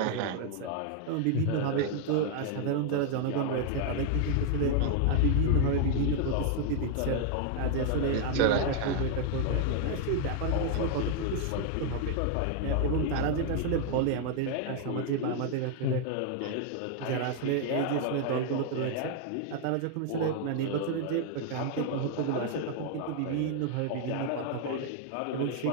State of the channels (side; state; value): both; different; correlation 0.00